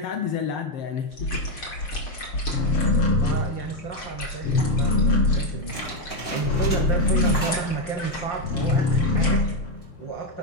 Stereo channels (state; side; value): late; right; 6.6 ms